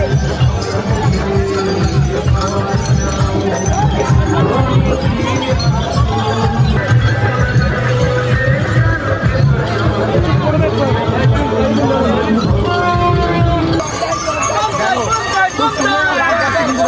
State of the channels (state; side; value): identical; both; correlation 1.00